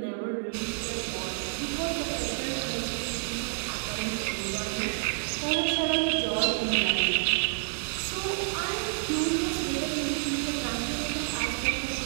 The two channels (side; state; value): left; silent; digital silence